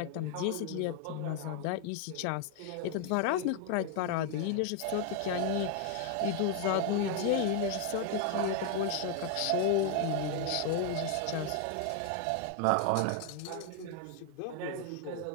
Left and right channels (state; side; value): different; both; correlation 0.00